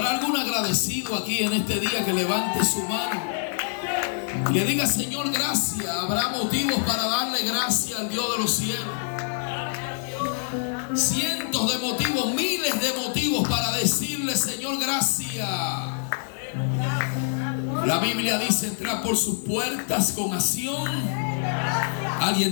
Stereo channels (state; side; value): silent; right; digital silence